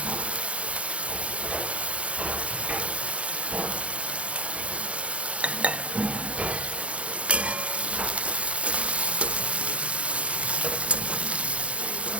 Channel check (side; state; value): left; late; 0.062 ms